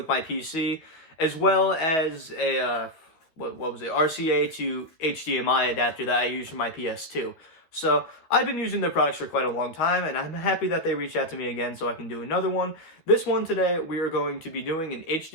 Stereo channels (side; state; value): right; late; 12 ms